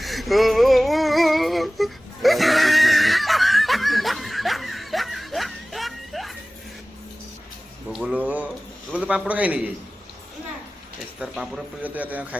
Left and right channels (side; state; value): both; normal; correlation 0.98